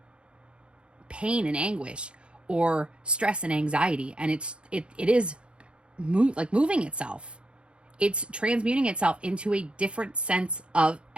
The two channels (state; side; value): late; left; 0.056 ms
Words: pain and anguish or stress and anxiety. And it is moving itself. It's transmuting itself into a different sense of